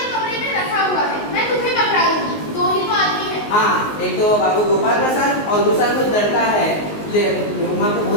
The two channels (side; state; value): right; late; 19 ms